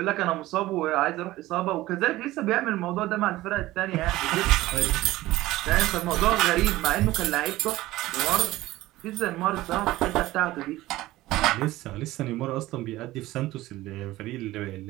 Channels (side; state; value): left; quieter; 17.2 dB